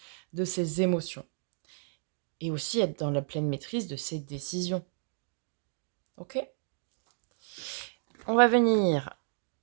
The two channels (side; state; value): left; silent; digital silence